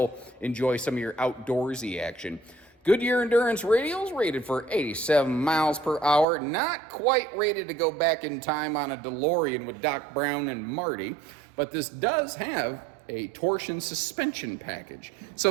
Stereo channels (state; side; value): drops out; left; at 6.2 s